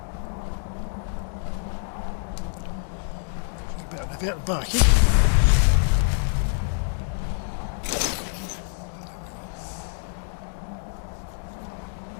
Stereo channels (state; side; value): silent; right; digital silence